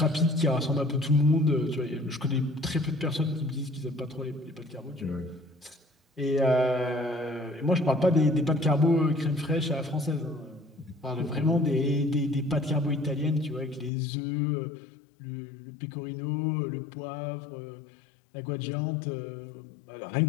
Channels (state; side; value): drops out; right; at 13.9 s